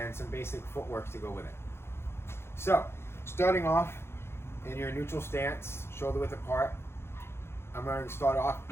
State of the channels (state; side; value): late; right; 0.12 ms